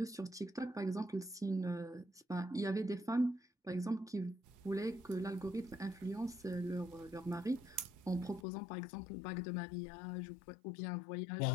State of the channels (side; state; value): right; drops out; at 8.5 s